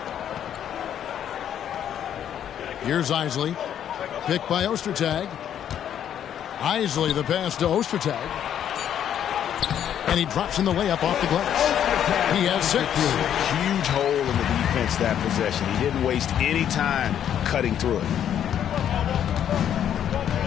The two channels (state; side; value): quieter; right; 9.8 dB